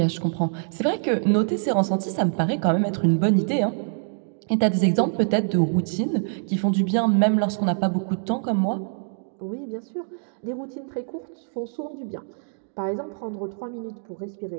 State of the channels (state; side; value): silent; left; digital silence